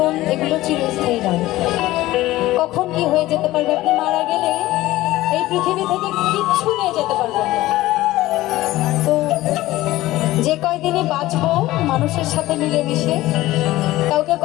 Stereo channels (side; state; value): right; quieter; 16.9 dB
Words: এগুলো চিরস্থায়ী নয়। কখন কি হয়ে যেতে পারবে, আপনি মারা গেলে এই পৃথিবী থেকে কিচ্ছু নিয়ে যেতে পারবেন না। তো যে কয়দিনই বাঁচবো মানুষের সাথে মিলেমিশে, কাউকে